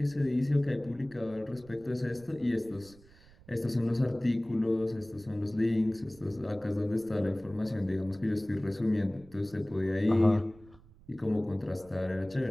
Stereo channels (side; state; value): right; noise; rumble, 24 dB below the sound